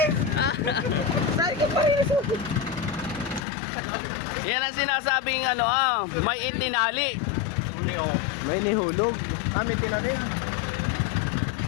Yan ang sinasabing may itinali. May nihulog. May tinanim.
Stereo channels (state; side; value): drops out; right; at 3.4 s